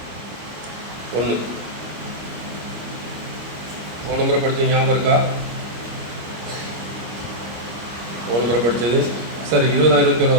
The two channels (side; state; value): left; late; 25 ms